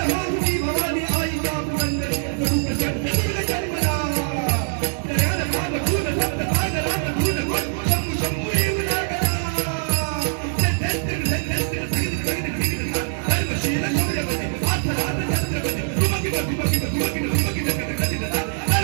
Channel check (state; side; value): silent; left; 64 dB below the other